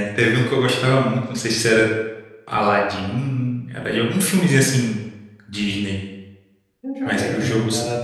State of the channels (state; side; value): identical; both; correlation 1.00